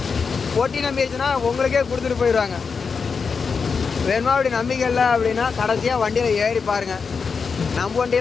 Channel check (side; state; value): right; quieter; 5.4 dB